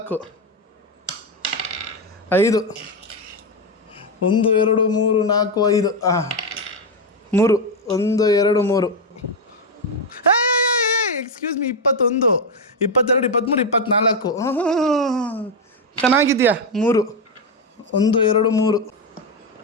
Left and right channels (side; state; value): both; normal; correlation 0.07